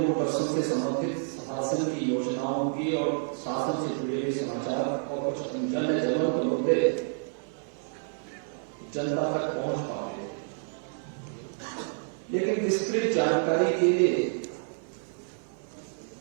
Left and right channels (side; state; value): left; silent; 58 dB below the other